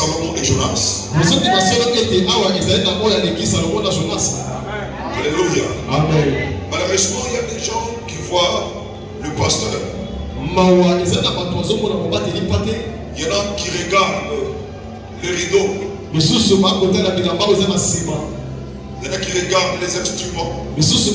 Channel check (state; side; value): identical; both; correlation 1.00